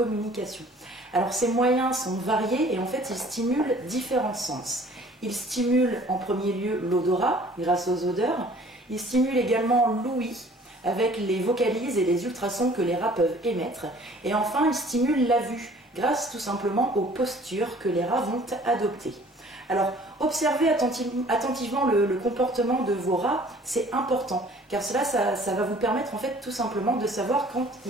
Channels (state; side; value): normal; both; correlation 0.53